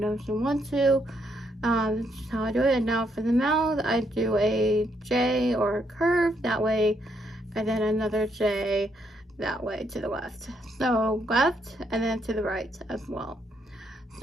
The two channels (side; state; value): both; normal; correlation 0.75